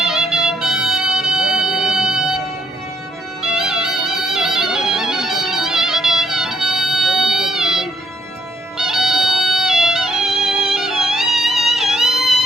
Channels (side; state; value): both; normal; correlation 0.71